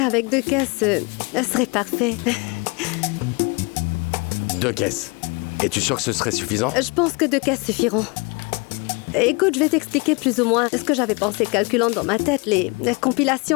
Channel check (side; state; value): right; quieter; 29.2 dB